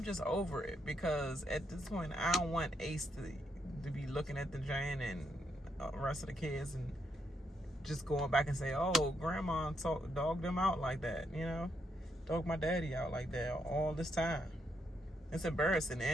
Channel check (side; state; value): both; normal; correlation 0.78